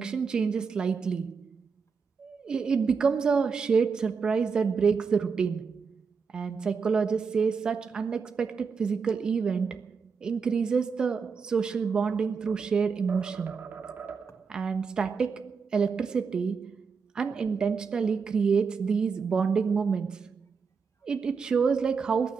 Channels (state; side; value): quieter; left; 5.5 dB